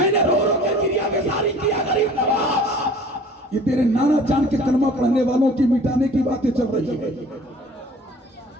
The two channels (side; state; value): both; normal; correlation 0.48